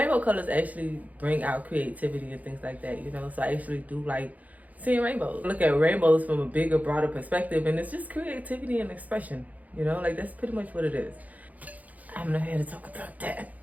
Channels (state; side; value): late; left; 0.077 ms